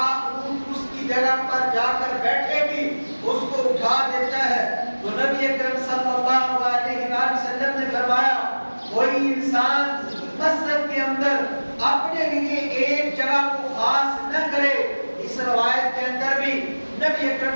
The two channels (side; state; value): both; inverted; correlation -1.00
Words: اس کی جگہ پر جا کر بیٹھے بھی اس کو اٹھا دیتا ہے۔ تو نبی اکرم صلی اللہ علیہ وآلہ وسلم نے فرمایا کوئی انسان مسجد کے اندر بھی نبی اکرم